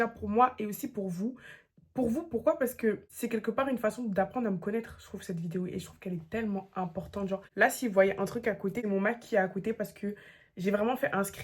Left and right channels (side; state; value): both; identical; correlation 1.00